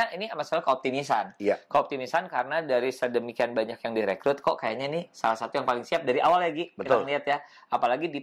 ini masalah keoptimisan. Keoptimisan karena dari sedemikian banyak yang direkrut kok kayaknya nih salah satu yang paling siap dari awal lagi. Kita lihat ya. Apalagi di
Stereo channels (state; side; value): identical; both; correlation 1.00